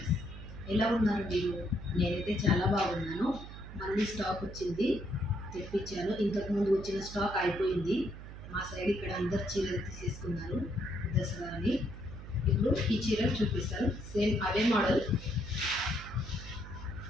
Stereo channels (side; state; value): right; noise; hum, 12 dB below the sound